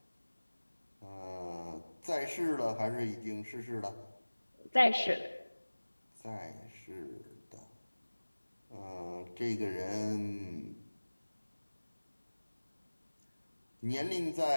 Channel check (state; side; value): inverted; both; correlation -1.00